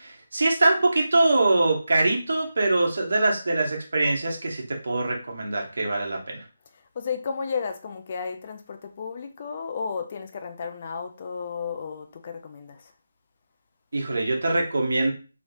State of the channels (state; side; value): inverted; both; correlation -0.91